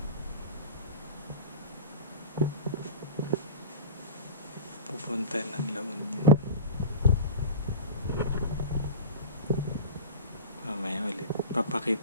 Pupunta ng La Union. Mamaya ulit.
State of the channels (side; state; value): both; inverted; correlation -0.33